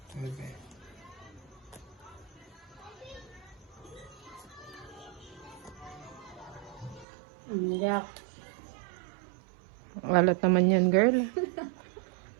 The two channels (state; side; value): drops out; left; at 7.1 s